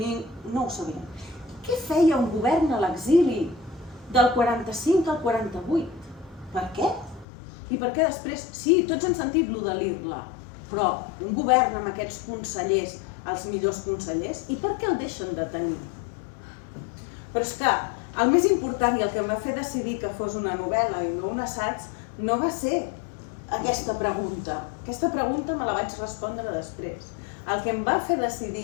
ho sabien. Què feia un govern a l'exili del 45 al 48? Per què? I per què després? Sí, tots hem sentit lo de l'Irla, però un govern amb aquests consellers, els millors consellers, i per què el deixen de tenir? Però és que el més important i el que em va fer decidir que fos una novel·la i no un assaig no va ser aquesta pregunta. Aquesta pregunta me la vaig respondre després. El que em va fer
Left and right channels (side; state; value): right; drops out; at 7.2 s